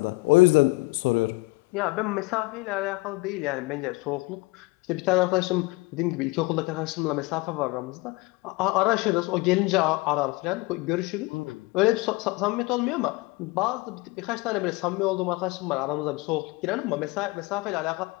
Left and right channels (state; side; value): quieter; right; 23.6 dB